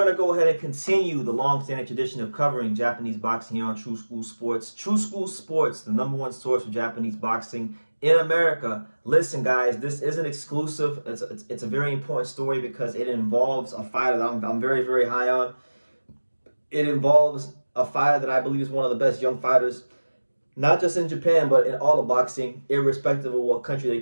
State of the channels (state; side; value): inverted; both; correlation -1.00